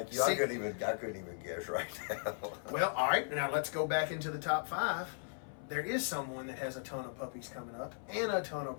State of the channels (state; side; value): silent; right; 53 dB below the other